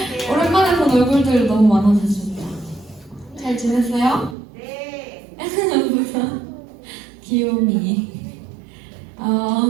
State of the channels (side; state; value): left; drops out; at 4.4 s